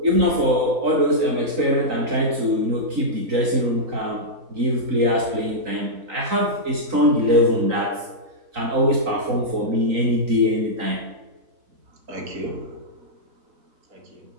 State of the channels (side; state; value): left; late; 3.8 ms